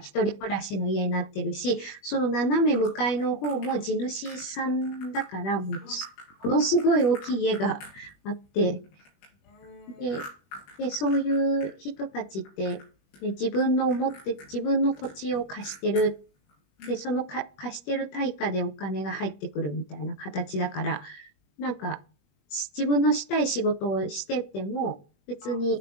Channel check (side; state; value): right; late; 21 ms